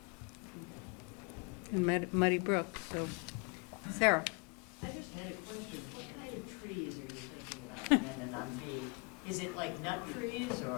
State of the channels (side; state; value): right; quieter; 33.1 dB